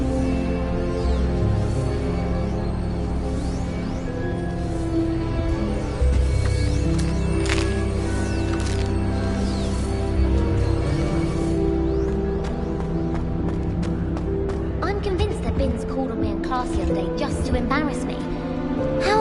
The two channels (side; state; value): both; identical; correlation 1.00